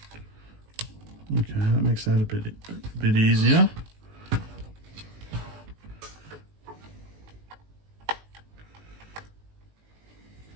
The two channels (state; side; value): late; left; 19 ms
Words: Okay, that makes that a bit easier.